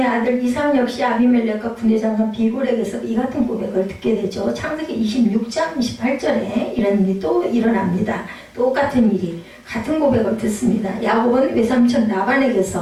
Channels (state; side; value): identical; both; correlation 1.00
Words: 아들 이삭 역시 아비멜렉과 군대장관 비골에게서 이 같은 고백을 듣게 되죠. 창세기 26장 28절에 이런 일이 또 일어납니다. 똑같은 일이 같은 고백을 듣습니다. 야곱은 외삼촌